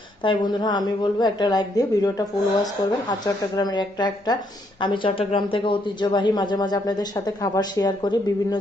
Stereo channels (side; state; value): both; normal; correlation 0.73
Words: তাই বন্ধুরা আমি বলবো একটা লাইক দিয়ে ভিডিওটা ফুল ওয়াচ করবেন। আর চট্টগ্রামের একটা আমি চট্টগ্রাম থেকে ঐতিহ্যবাহী মাঝে মাঝে আপনাদের সাথে খাবার শেয়ার করি, বিভিন্ন